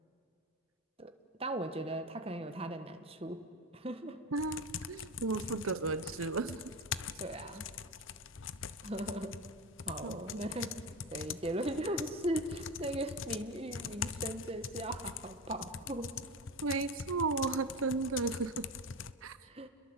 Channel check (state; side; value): normal; both; correlation 0.23